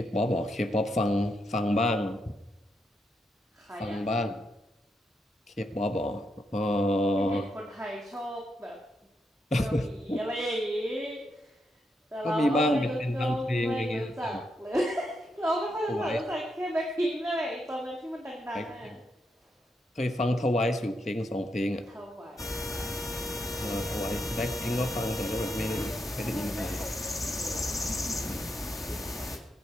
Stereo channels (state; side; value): normal; both; correlation 0.82